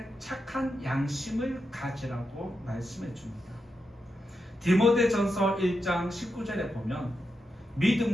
착한 양심을 가지라고 말씀해 줍니다. 디모데전서 1장 19절에 보면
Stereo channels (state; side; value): normal; both; correlation 0.87